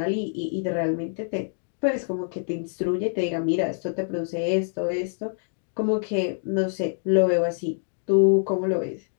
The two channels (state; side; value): silent; right; digital silence